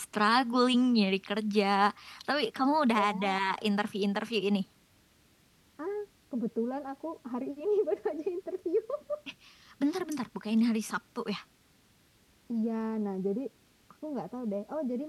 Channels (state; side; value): identical; both; correlation 1.00